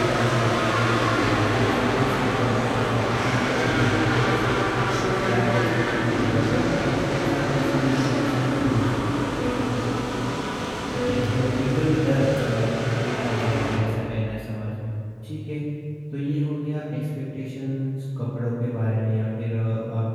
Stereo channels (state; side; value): identical; both; correlation 1.00